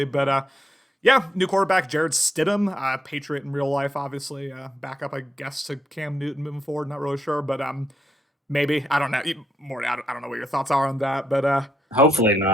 But yeah, new quarterback, Jared Stidham, Patriot in real life, obviously. Backup, I guess, to Cam Newton moving forward. Not really sure, but maybe. I don't know. Morty, I don't know what your thoughts are on that, but Hopefully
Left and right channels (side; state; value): both; normal; correlation 0.80